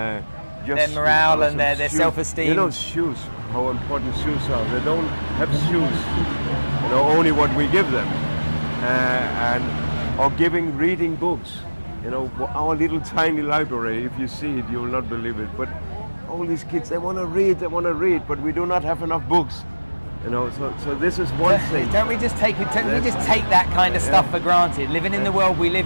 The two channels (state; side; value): inverted; both; correlation -1.00